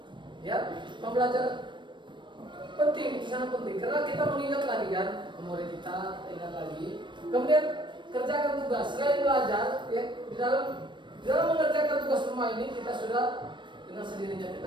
Ya, pembelajaran penting, itu sangat penting karena kita mengingat lagi kan, memori kita ingat lagi. Kemudian kerjakan tugas. Selain belajar, ya, di dalam mengerjakan tugas rumah ini kita sudah dengan sendirinya kita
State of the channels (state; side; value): late; left; 0.23 ms